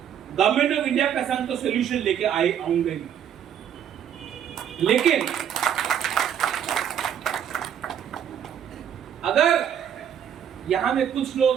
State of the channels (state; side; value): quieter; left; 9.2 dB